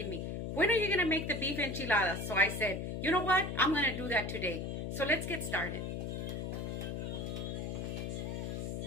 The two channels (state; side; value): noise; left; hum, 3 dB below the sound